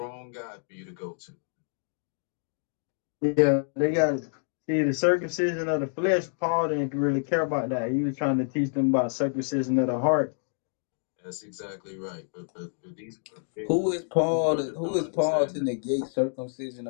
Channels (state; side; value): silent; right; digital silence